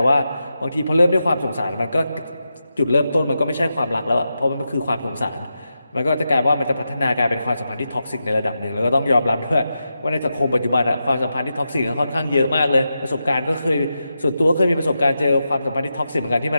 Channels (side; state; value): both; inverted; correlation -0.88